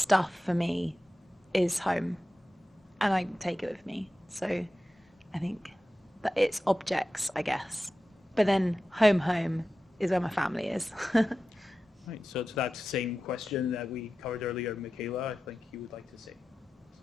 for me is home, and I take it with me. So I think that it's objects, I guess. But then home is where my family is. Right, so to that same question that we covered earlier, Michaela, I think you would like to say.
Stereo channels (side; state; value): both; normal; correlation 0.93